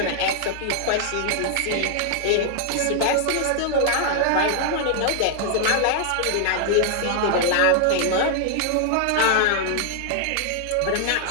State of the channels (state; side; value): different; both; correlation 0.00